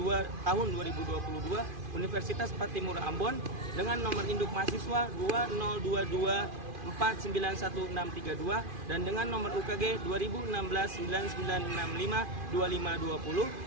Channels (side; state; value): left; late; 2.5 ms